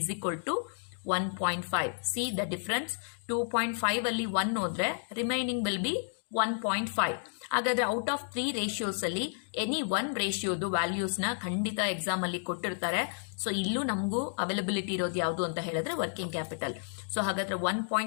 equal to 1.5. C the difference. 2.5 ಅಲ್ಲಿ 1 ಹೋದ್ರೆ ರಿಮೈನಿಂಗ್ ವಿಲ್ ಬಿ 1.5. ಹಾಗಾದ್ರೆ ಔಟ್ ಆಫ್ 3 ರೇಷಿಯೋಸ್ ಅಲ್ಲಿ ಎನಿ 1 ರೇಷಿಯೋದು ವ್ಯಾಲ್ಯೂಸ್ ನ ಖಂಡಿತ ಎಕ್ಸಾಮ್ ಅಲ್ಲಿ ಕೊಟ್ಟಿರ್ತಾರೆ. ಸೊ ಇಲ್ಲೂ ನಮಗೂ ಅವೈಲಬಿಲಿಟಿ ಇರೋದು ಯಾವುದು ಅಂತ ಹೇಳಿದ್ರೆ ವರ್ಕಿಂಗ್ ಕ್ಯಾಪಿಟಲ್. ಸೊ ಹಾಗಾದ್ರೆ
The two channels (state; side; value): silent; right; digital silence